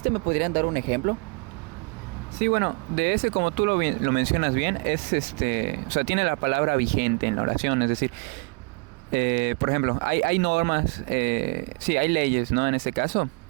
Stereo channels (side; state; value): left; quieter; 30.1 dB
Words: ¿Me podrían dar un ejemplo? Sí, bueno, de ese, como tú lo mencionas bien, es o sea, tiene la palabra vigente en la oración, es decir, por ejemplo, hay normas, sí, hay leyes, ¿no? En este caso,